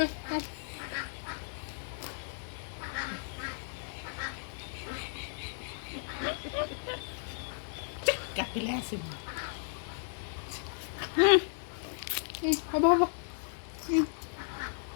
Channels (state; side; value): silent; right; digital silence